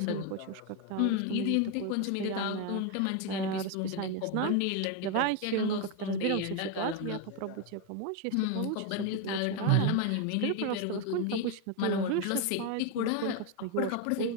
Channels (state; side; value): different; both; correlation 0.02